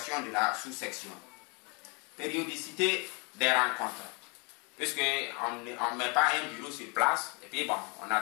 de la sous-section. Périodicité des rencontres. Puisqu'on ne met pas un bureau sur place, et puis bon, on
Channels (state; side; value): quieter; right; 31.6 dB